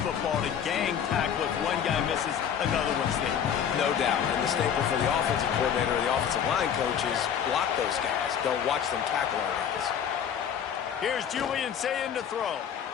to gang tackle. If one guy misses, another one's there. No doubt. And the staple for the offensive coordinator or the offensive line coach is block those guys. Don't watch them tackle our guys. Here's Julian saying to throw.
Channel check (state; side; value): quieter; right; 8.4 dB